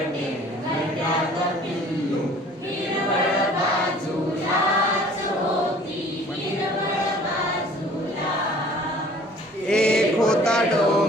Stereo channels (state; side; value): normal; both; correlation 0.51